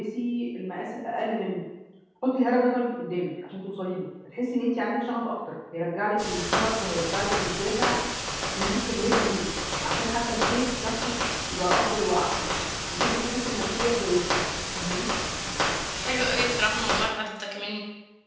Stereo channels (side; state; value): both; identical; correlation 1.00